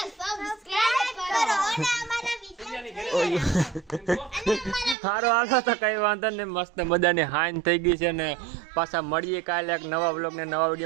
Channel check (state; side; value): drops out; left; at 5.0 s